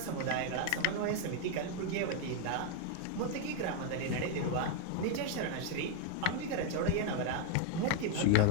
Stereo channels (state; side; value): different; both; correlation 0.00